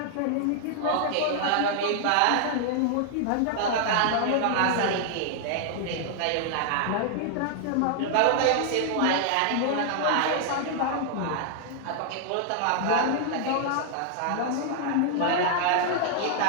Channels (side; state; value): both; different; correlation -0.01